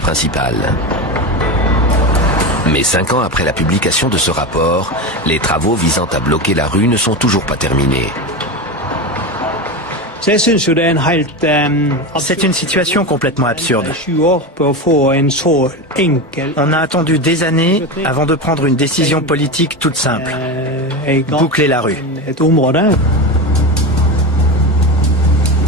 Mais 5 ans après la publication de ce rapport, les travaux visant à bloquer la rue ne sont toujours pas terminés. C'est une situation complètement absurde. On a attendu des années avant de prendre une décision politique toute simple. Boucler la rue.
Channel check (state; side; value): normal; both; correlation 0.20